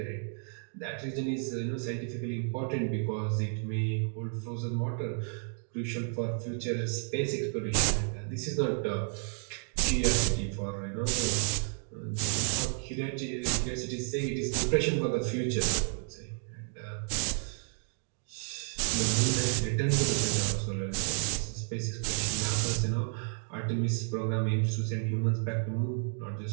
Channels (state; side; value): silent; left; 57 dB below the other